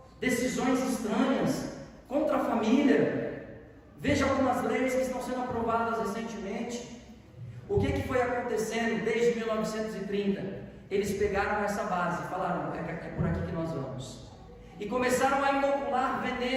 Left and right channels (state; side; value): identical; both; correlation 1.00